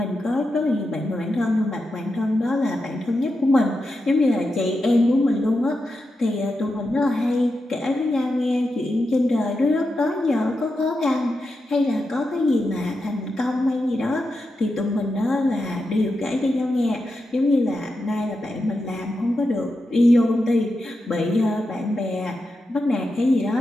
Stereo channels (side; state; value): both; normal; correlation 0.88